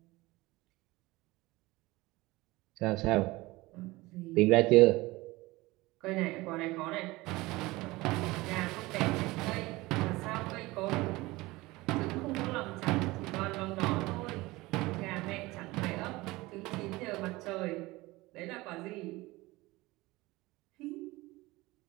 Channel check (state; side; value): quieter; left; 20.7 dB